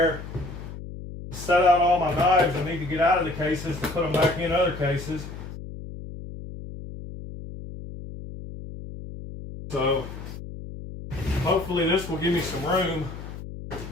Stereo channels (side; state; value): left; noise; hum, 11 dB below the sound